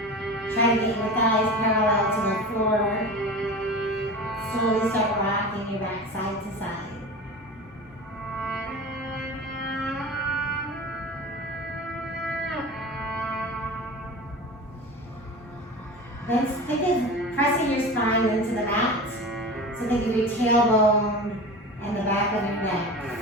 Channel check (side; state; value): both; normal; correlation 0.32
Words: Try to get your thighs parallel to the floor. Slowly start rocking your back side to side. Then think of pressing your spine into the mat. So think of your tailbone and the back of your neck